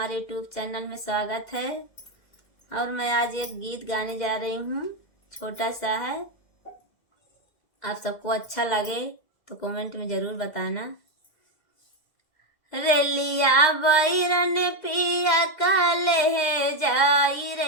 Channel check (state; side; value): late; right; 2.0 ms